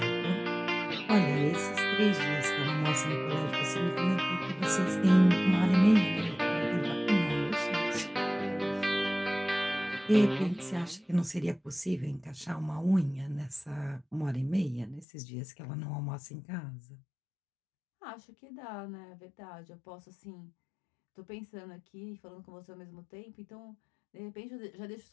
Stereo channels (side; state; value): right; drops out; at 15.1 s